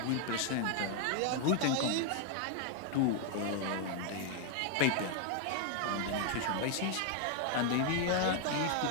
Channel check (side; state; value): both; different; correlation 0.00